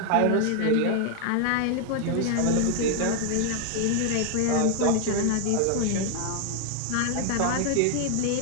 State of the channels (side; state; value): both; different; correlation 0.00